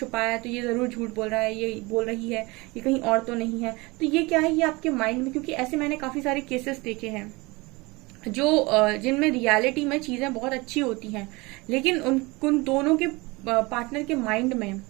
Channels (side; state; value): left; quieter; 24.4 dB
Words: है तो ये जरूर झूठ बोल रहा है, ये बोल रही है, ये कहीं और तो नहीं है। तो ये क्या है, ये आपके माइंड में, क्योंकि ऐसे मैंने काफी सारे केसेस देखे हैं जो जिनमें रियलिटी में चीजें बहुत अच्छी होती हैं, लेकिन उन दोनों के पार्टनर के माइंड में